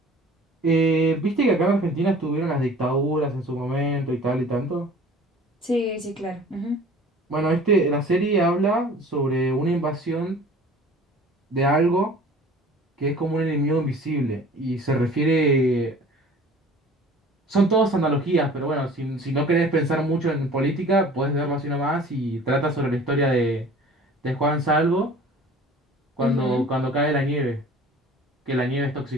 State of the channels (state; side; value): normal; both; correlation 0.46